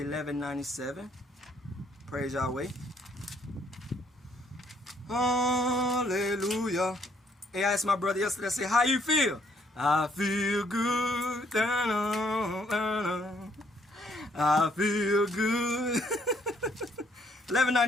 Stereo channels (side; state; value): both; normal; correlation 0.68